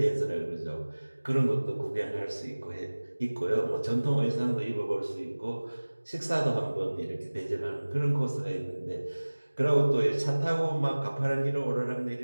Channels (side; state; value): both; inverted; correlation -1.00